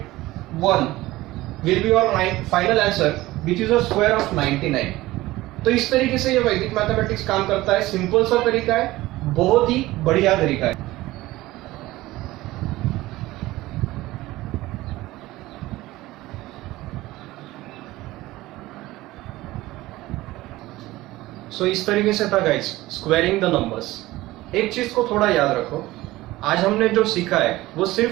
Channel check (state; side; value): quieter; left; 17.9 dB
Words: will be your final answer which is a square of 99। तो इस तरीके से ये वैदिक मैथमेटिक्स काम करता है। सिंपल सा तरीका है, बहुत ही बढ़िया तरीका है। सो इस तरीके से था गाइस स्क्वायरिंग द नंबर्स। एक चीज को थोड़ा याद रखो, आज हमने जो सीखा है वो